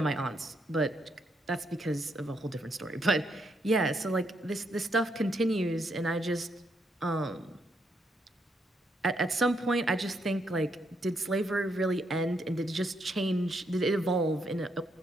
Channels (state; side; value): normal; both; correlation 0.76